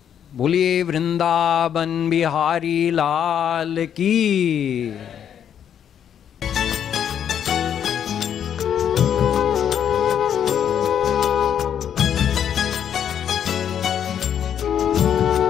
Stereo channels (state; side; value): quieter; right; 9.0 dB